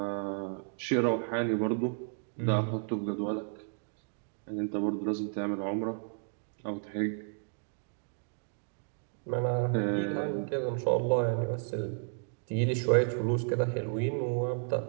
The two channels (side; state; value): left; silent; 56 dB below the other